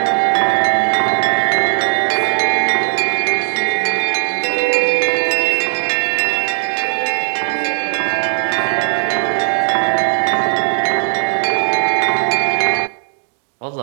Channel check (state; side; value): silent; left; digital silence